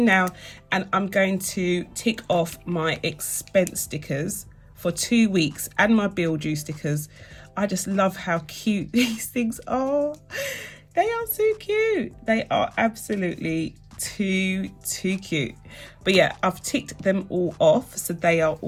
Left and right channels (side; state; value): both; identical; correlation 1.00